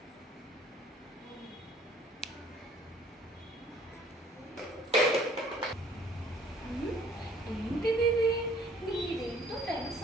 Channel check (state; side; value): normal; both; correlation 0.57